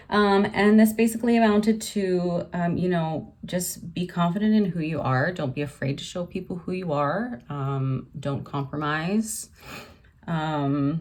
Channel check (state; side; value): identical; both; correlation 1.00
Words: And this basically amounted to, just be confident in who you are. Don't be afraid to show people who you are. Don't compromise. And